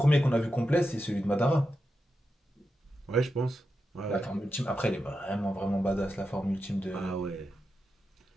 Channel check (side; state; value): both; normal; correlation 0.88